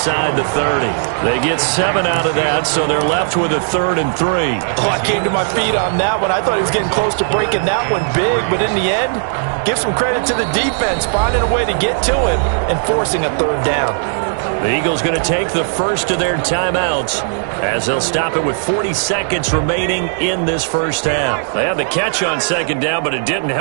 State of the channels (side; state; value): left; silent; digital silence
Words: the 30. They get 7 out of that, so they're left with a 3rd and 3. Oh, I came to my feet on that one. I thought he was getting close to breaking that one big, but in the end, give some credit to the defense, finding a way to get to him and forcing a 3rd down. The Eagles going to take the first of their timeouts as they'll stop it with 40 seconds remaining in this first half. They had the catch on 2nd down, but it didn't